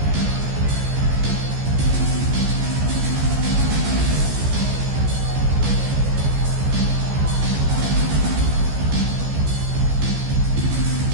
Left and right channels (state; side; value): late; left; 14 ms